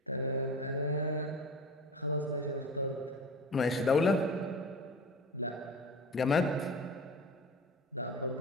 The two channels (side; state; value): both; normal; correlation 0.35